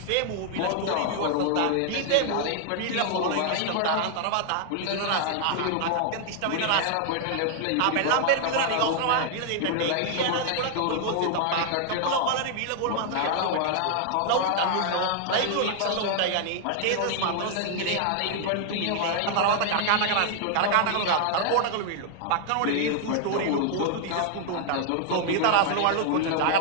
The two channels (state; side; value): different; both; correlation 0.00